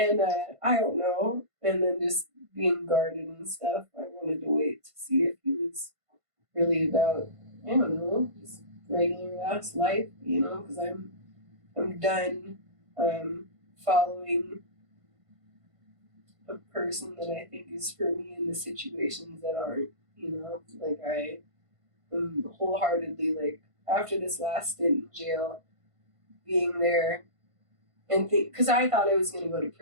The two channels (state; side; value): late; left; 1.5 ms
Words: I don't know. And then just being guarded and stuff, I wanted to wait to see if he was really about, I don't know, just regular ass life, you know, because I'm done following a person that I think is for me in the situations that aren't, you know, like I am wholeheartedly like after this last stint in jail, being there and think, because I thought I was going to go to